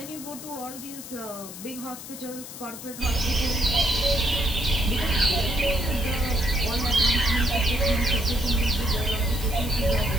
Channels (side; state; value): left; noise; hiss, 12 dB below the sound